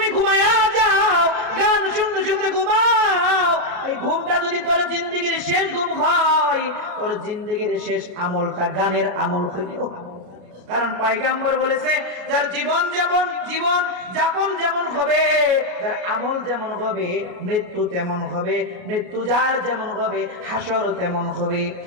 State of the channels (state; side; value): late; left; 33 ms